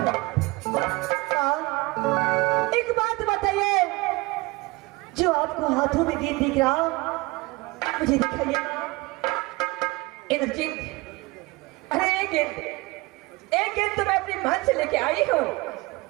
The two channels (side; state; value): left; quieter; 23.0 dB